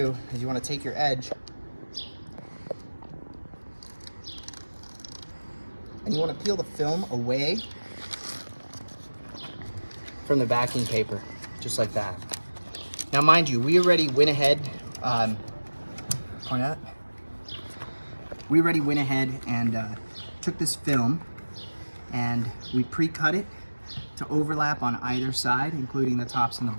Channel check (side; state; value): both; inverted; correlation -1.00